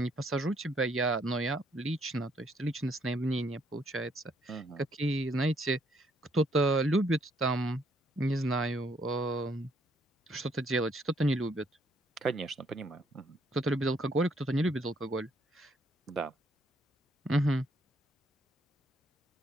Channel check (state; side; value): normal; both; correlation 0.69